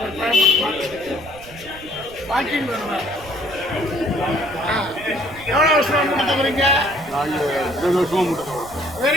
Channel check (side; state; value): right; noise; rumble, 19 dB below the sound